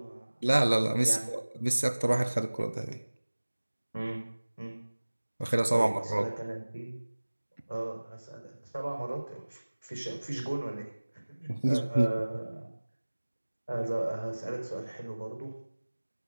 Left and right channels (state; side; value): inverted; both; correlation -1.00